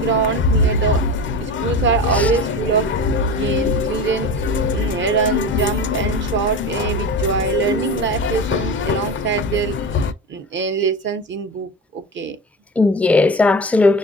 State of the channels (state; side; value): normal; both; correlation 0.28